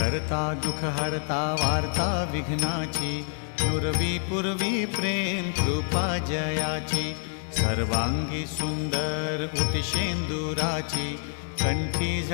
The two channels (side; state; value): right; silent; 60 dB below the other